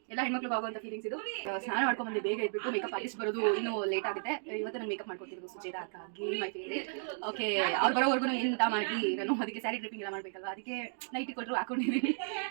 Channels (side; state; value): left; silent; digital silence